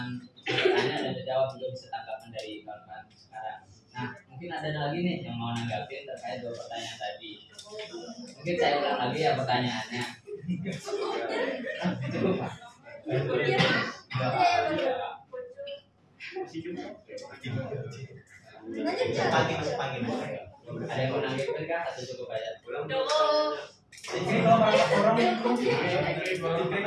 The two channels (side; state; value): both; identical; correlation 1.00